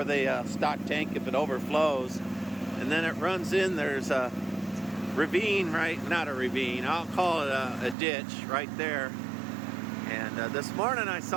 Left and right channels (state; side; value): drops out; left; at 8.0 s